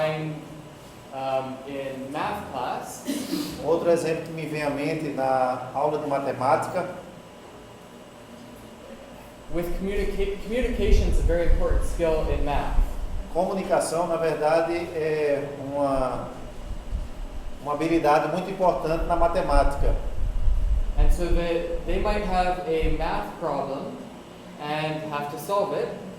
in math class Outro exemplo que me vem à mente na aula de matemática, with communication is a very important skill in math. comunicação, na verdade, é uma habilidade muito importante na matemática. And so they might have a math problem and have to solve it.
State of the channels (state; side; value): identical; both; correlation 1.00